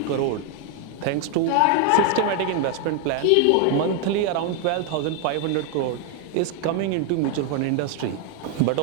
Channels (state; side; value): different; both; correlation 0.01